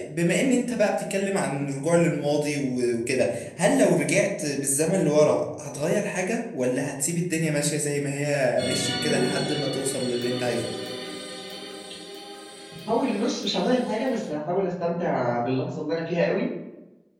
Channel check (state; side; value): identical; both; correlation 1.00